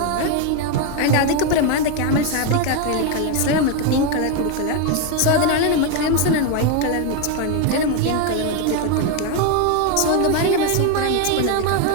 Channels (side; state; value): both; different; correlation 0.02